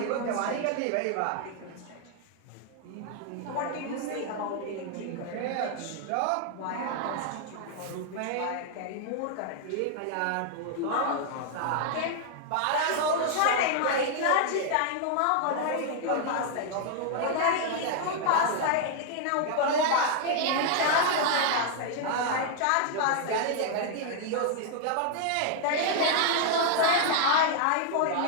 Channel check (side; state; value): both; different; correlation 0.00